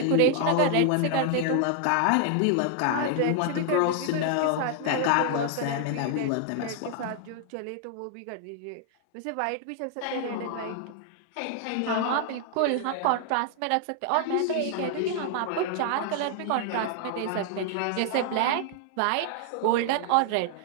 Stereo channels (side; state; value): both; different; correlation 0.00